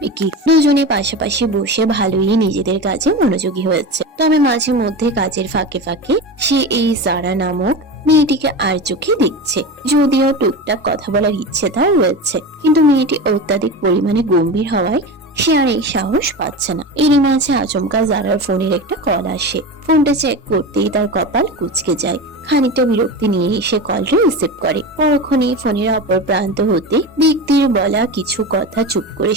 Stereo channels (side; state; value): both; normal; correlation 0.26